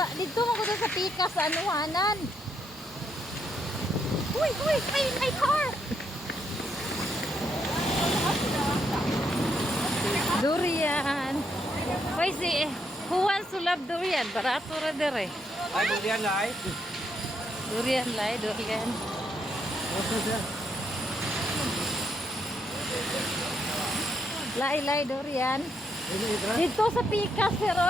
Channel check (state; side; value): normal; both; correlation 0.77